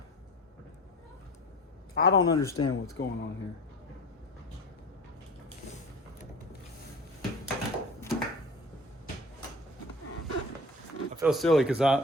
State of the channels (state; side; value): normal; both; correlation 0.39